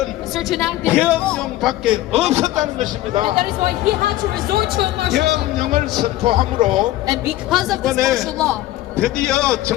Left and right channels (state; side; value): quieter; right; 15.5 dB